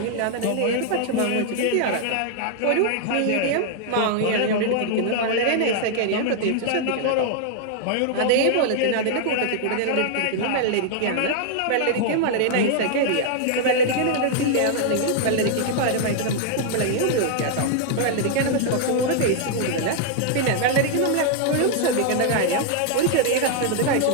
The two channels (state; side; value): different; both; correlation 0.00